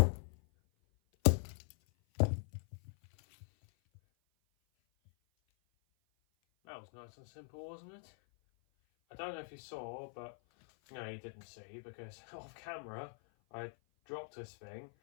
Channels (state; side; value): silent; right; 50 dB below the other